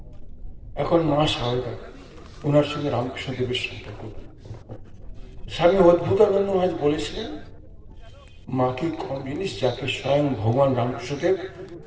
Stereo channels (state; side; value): identical; both; correlation 1.00